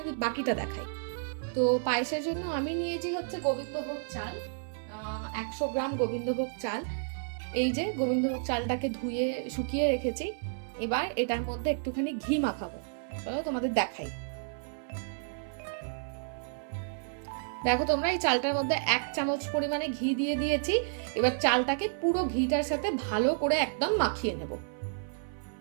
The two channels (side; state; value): left; silent; 57 dB below the other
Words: বাকিটা দেখাই। তো পায়েসের জন্য আমি নিয়েছি হচ্ছে গোবিন্দভোগ চাল, 100 গ্রাম গোবিন্দভোগ চাল। এই যে গোবিন্দভোগ চালটাকে ধুয়ে শুকিয়ে রেখেছি। এবার এটার মধ্যে একটুখানি ঘি মাখাবো। চলো তোমাদের দেখাই। দেখো তোমরা, এই চালটার মধ্যে 1 চামচ পরিমাণে ঘি দিয়ে দিয়েছি। এবার চালটাকে পুরো ঘিটার সাথে ভালো করে একদম মাখিয়ে নেব।